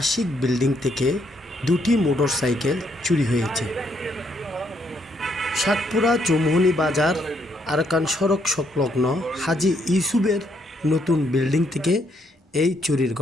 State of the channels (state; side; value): normal; both; correlation 0.73